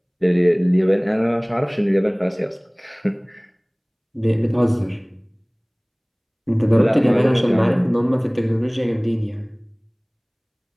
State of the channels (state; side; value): identical; both; correlation 1.00